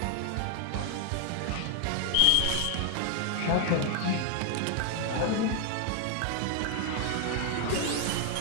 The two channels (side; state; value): both; different; correlation 0.00